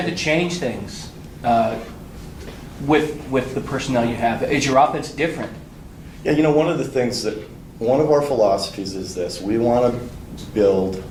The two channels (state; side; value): identical; both; correlation 1.00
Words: to change things with the personnel you have? Is your offense different? Yeah, you know, one of our philosophies is this: we want to build